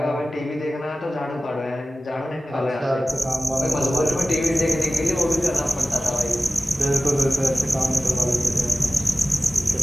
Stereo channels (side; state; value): both; normal; correlation 0.96